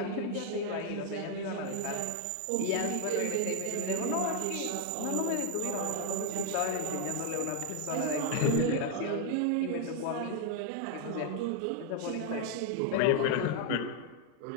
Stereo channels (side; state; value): both; different; correlation 0.00